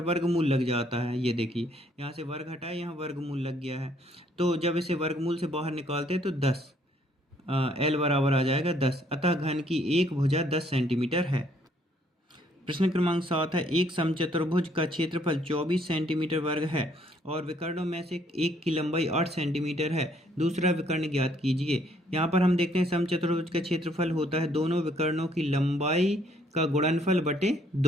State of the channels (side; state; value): both; normal; correlation 0.66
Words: लग जाता है, ये देखिए यहाँ से वर्ग हटाए, यहाँ वर्गमूल लग गया है। तो जब इसे वर्गमूल से बाहर निकालते हैं तो 10, l बराबर आ जाएगा 10, अतः घन की एक भुजा 10 सेंटीमीटर है। प्रश्न क्रमांक 7 है, एक समचतुर्भुज का क्षेत्रफल 24 सेंटीमीटर वर्ग है और विकर्णों में से एक की लंबाई 8 सेंटीमीटर है, दूसरा विकर्ण ज्ञात कीजिए। यहाँ पर हम देखते हैं समचतुर्भुज का क्षेत्रफल होता है दोनों विकर्णों की लंबाई का गुणनफल बटे